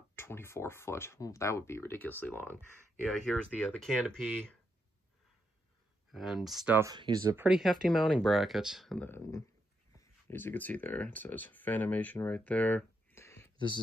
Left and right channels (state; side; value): normal; both; correlation 0.81